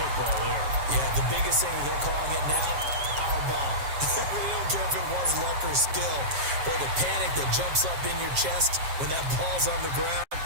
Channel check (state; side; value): late; left; 7.4 ms